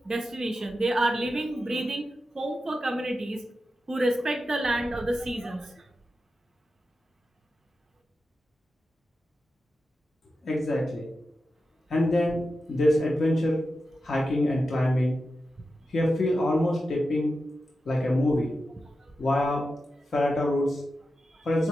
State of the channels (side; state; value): both; normal; correlation 0.91